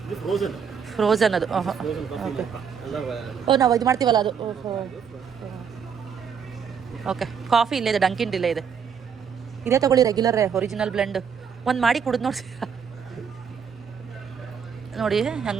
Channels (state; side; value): quieter; left; 7.0 dB